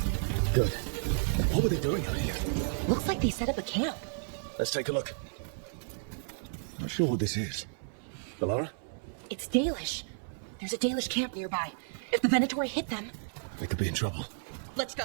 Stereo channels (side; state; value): left; silent; 56 dB below the other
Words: Good. What were they doing out here? Looks like they set up a camp. Let's take a look. Not sure what this is. Valara? It's Dalish. There's a Dalish camp nearby. If the Venatori hit them... They could be in trouble. Let's